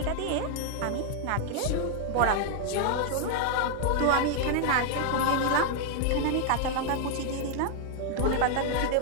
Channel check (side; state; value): both; different; correlation -0.01